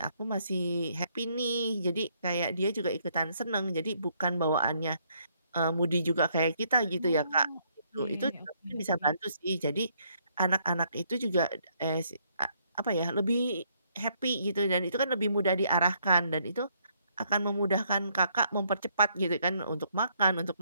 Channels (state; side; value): inverted; both; correlation -0.70